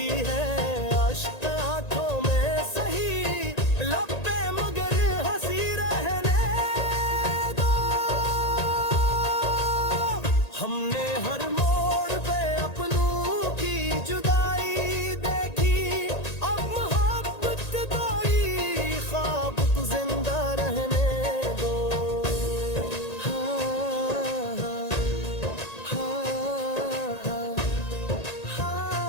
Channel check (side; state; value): right; late; 1.9 ms